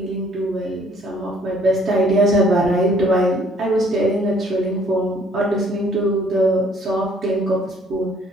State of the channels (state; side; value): normal; both; correlation 0.61